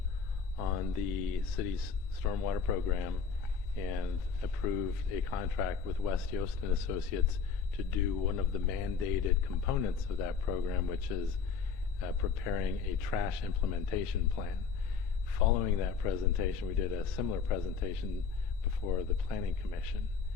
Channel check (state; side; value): quieter; right; 5.7 dB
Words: on the city's stormwater program and approved a contract with West Yost and Associates to do one of the mandated components of that program, which is preparing a trash implementation plan. Following that presentation, we did a similar presentation before the Planning Commission.